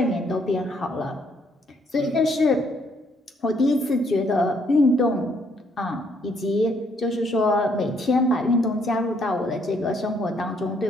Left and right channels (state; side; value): normal; both; correlation 0.69